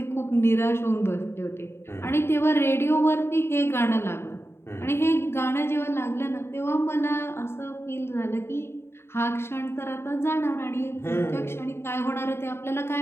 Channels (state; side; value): late; right; 0.12 ms